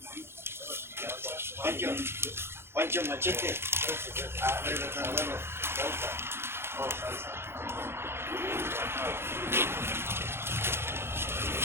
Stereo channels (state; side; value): late; left; 0.12 ms